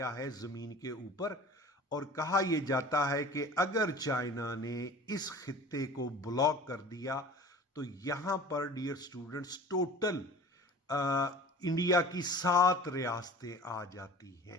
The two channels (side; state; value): both; normal; correlation 0.42